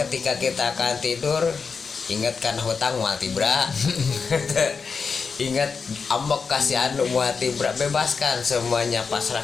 kita akan tidur ingatkan hutang mual tibra. Ingat, ambek kasih anu hati berat, bebaskan semuanya,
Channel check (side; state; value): right; quieter; 5.3 dB